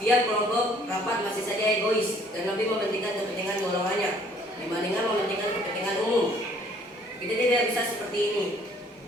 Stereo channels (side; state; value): both; normal; correlation 0.59